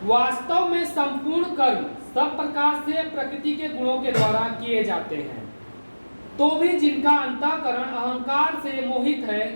वास्तव में संपूर्ण कर्म सब प्रकार से प्रकृति के गुणों के द्वारा किए जाते हैं, तो भी जिनका अंतःकरण अहंकार से मोहित है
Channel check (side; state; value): both; inverted; correlation -1.00